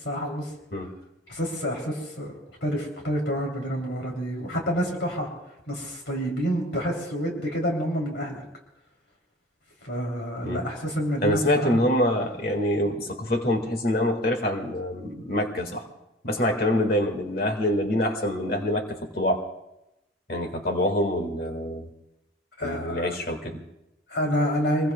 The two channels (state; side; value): normal; both; correlation 0.41